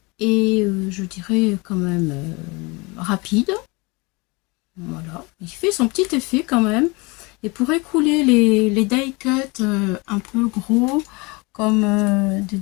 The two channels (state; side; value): quieter; right; 26.7 dB